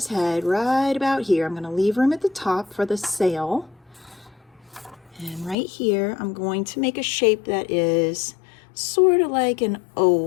head right about here. I'm going to leave room at the top for the sail. And right here, I'm going to make a shape that is sort of like an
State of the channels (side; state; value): right; drops out; at 5.6 s